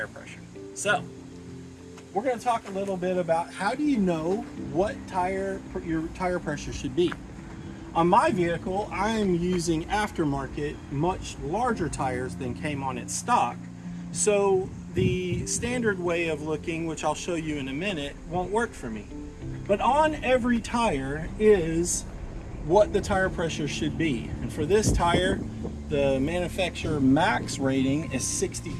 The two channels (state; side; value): identical; both; correlation 1.00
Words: pressure. So, we're going to talk a little bit about how do you know what your tire pressure should be. On my vehicle, I am using aftermarket, much larger tires than came on its stock. So the standard way of looking, which I'll show you in a minute, won't work for me. But on every tire is what the tire pressure should be. And for this tire, the manufacturer max rating is